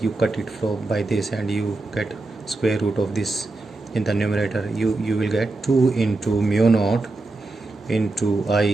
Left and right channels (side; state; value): left; quieter; 3.1 dB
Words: you cut it from by this and you get square root of this in the numerator. you will get 2 into mu naught into